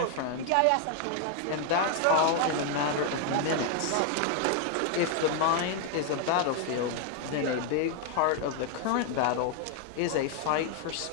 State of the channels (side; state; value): both; different; correlation 0.00